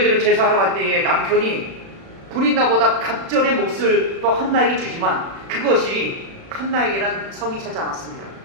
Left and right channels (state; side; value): late; left; 36 ms